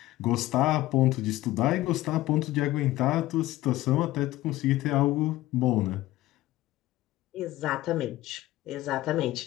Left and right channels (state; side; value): quieter; right; 16.3 dB